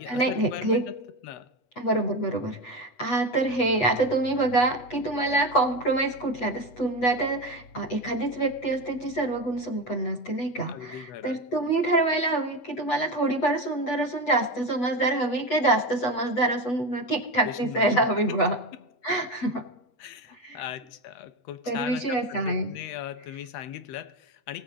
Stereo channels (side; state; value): right; late; 8.1 ms